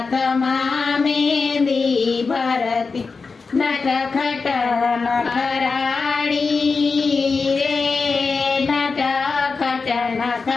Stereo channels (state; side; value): quieter; right; 4.6 dB